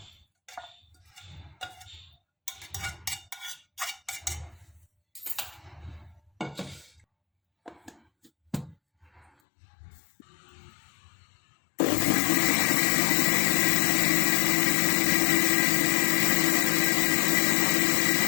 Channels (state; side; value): drops out; right; at 9.3 s